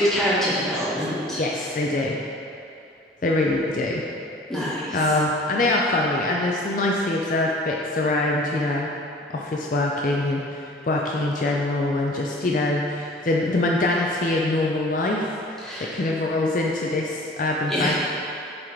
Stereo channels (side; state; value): both; normal; correlation 0.47